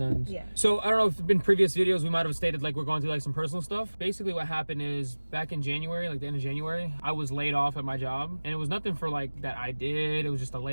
Yeah. So, I don't know if in previous videos we might have stated like we're going through like some personal stuff. Basically what happened is back in January, like the end of January, I was laid off at my job. And it was nothing for like that I did. It was just a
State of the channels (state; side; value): inverted; both; correlation -1.00